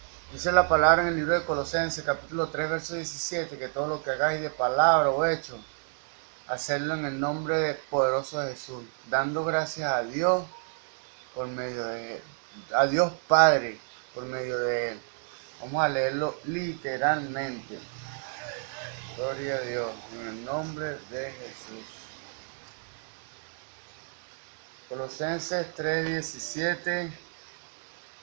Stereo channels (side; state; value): left; silent; 58 dB below the other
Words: Dice la palabra en el libro de Colosenses, capítulo 3, verso 17, que todo lo que hagáis de palabra o hecho, hacerlo en el nombre poderoso de Jesús, dando gracias a Dios por medio de él, a Dios Padre por medio de él. Vamos a leerlo literalmente. Gloria a Dios, en el nombre de Jesús. Colosenses 3:17.